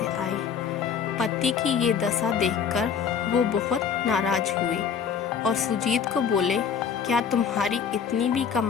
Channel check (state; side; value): quieter; right; 7.0 dB